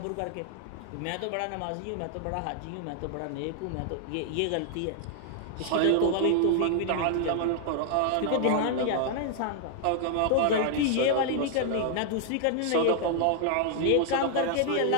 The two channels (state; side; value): different; both; correlation 0.00